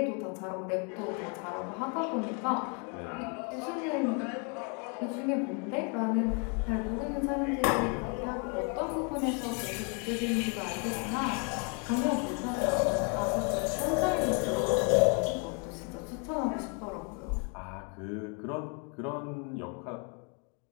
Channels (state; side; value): quieter; right; 35.8 dB